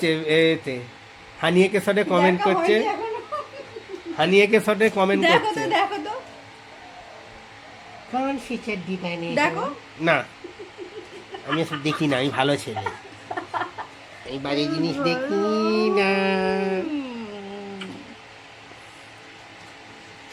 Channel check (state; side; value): identical; both; correlation 1.00